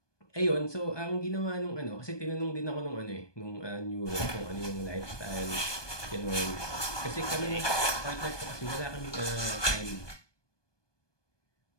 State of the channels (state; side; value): late; right; 1.2 ms